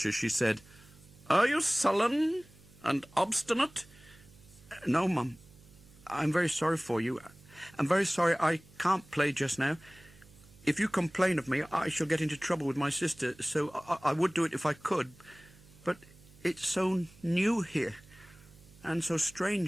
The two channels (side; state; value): right; noise; hum, 24 dB below the sound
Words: as she said, "Are you sullen and obstinate?" "No, Mum. I'm very sorry for you. I'm very sorry I can't play just now. If you complain of me, I shall get into trouble with my sister, so I would do it if I could. But it's so new here, and so